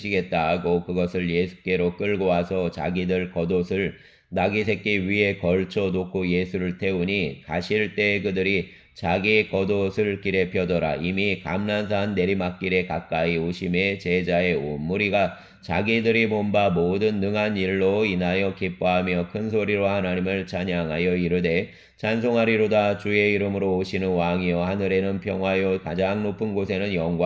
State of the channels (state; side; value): identical; both; correlation 1.00